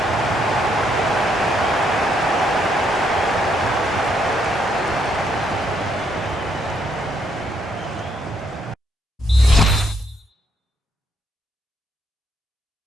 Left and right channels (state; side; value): normal; both; correlation 0.73